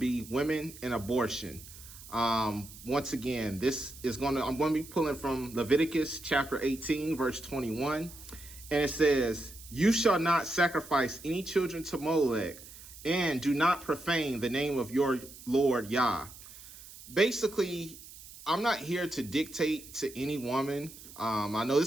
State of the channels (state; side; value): noise; right; hiss, 17 dB below the sound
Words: women and abortion. Once again, I'm going to be pulling from Leviticus chapter 18, verse 21. And it says, "You shall not sacrifice any children to Molech, and do not profane the name of your Lord Yah." Basically, I'm not here to dictate to any woman. I know this